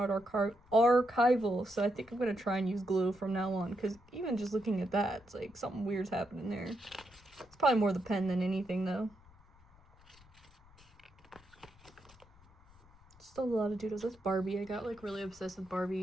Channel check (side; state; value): left; noise; rumble, 26 dB below the sound